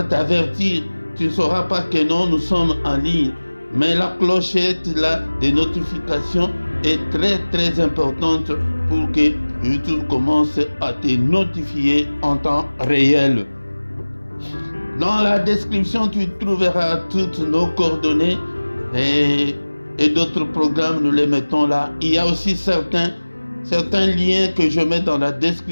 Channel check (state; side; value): inverted; both; correlation -1.00